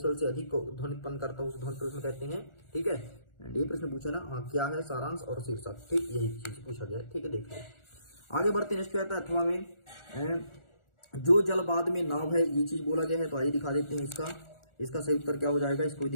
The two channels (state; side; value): late; right; 1.4 ms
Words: से अधिक ध्वनि उत्पन्न करता है उसे ध्वनि प्रदूषण कहते हैं। ठीक है, ये प्रश्न पूछा ना, हाँ क्या है सारांश और शीर्षक, ठीक यही चीज पूछा गया है। ठीक है, देख लो आगे बढ़ते। नेक्स्ट क्या आता है, अथवा में जो जल बाद में नाव है, ये चीज बोला गया है। तो आइए दिखा देते हैं इसका सही उत्तर क्या हो जाएगा, इसको भी